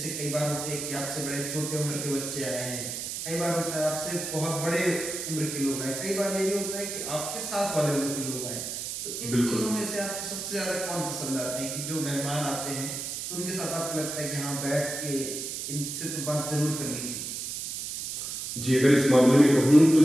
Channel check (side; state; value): right; noise; hiss, 5 dB below the sound